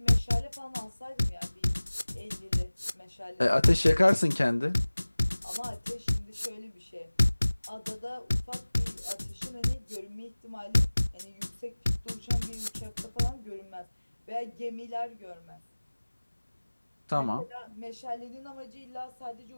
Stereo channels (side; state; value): both; inverted; correlation -1.00